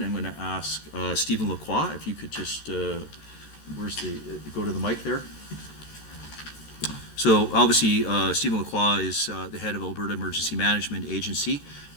I'm going to ask Stephen Lacroix, if you could just, go to the mic there. So obviously, Stephen Lacroix is the head of Alberta Emergency Management Agency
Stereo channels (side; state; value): right; late; 14 ms